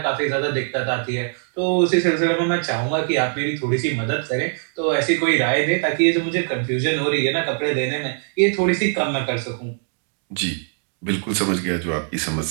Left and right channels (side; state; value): left; silent; 64 dB below the other